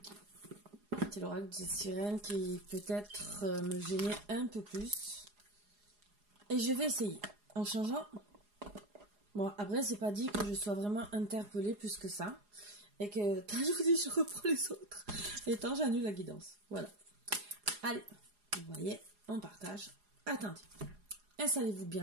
C'est l'oracle des sirènes qui peut-être me gênait un peu plus. Et je vais essayer en changeant. Bon, après, c'est pas dit que je sois vraiment interpellée plus que ça. Et que, tant je vous dis, je reprends les autres. Et tant j'annule la guidance. Voilà. Allez, vous voyez, on partage. Attendez. Installez-vous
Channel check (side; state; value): left; late; 4.8 ms